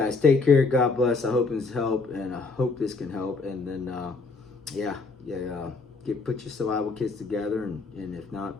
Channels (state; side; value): quieter; right; 4.0 dB